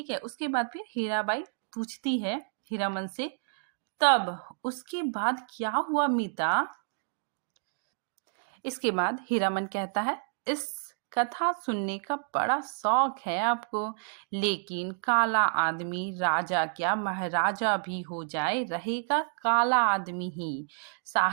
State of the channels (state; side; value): silent; left; digital silence